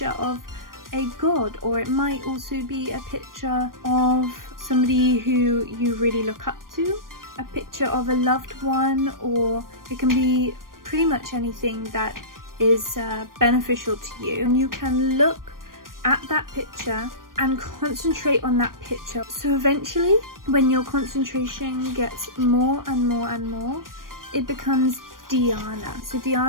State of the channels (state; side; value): late; left; 0.91 ms